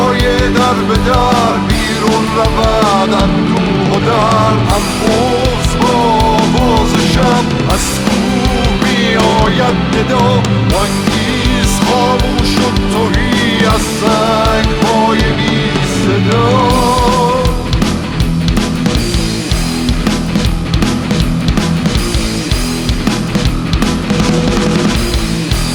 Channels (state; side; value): identical; both; correlation 1.00